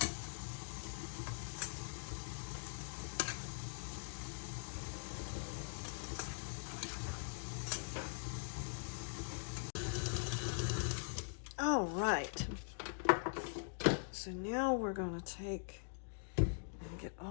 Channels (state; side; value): silent; right; digital silence